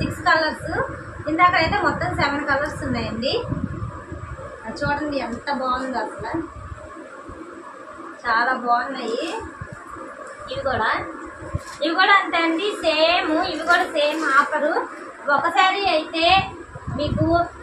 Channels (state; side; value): identical; both; correlation 1.00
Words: కలర్స్. ఇందాక అయితే మొత్తం 7 కలర్స్ ఉన్నాయండి. చూడండి ఎంత బాగుందో అసలు, చాలా బాగున్నాయి. ఇవి కూడా అంతే అండి. ఇవి కూడా సేమ్ ఆఫరు. ఒక శారీ అయితే మీకు